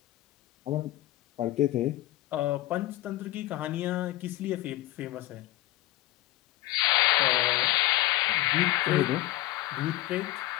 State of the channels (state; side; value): quieter; right; 16.5 dB